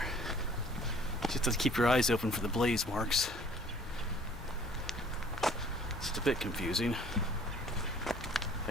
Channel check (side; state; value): both; normal; correlation 0.54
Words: Just to keep your eyes open for the blaze marks. It's a bit confusing. Like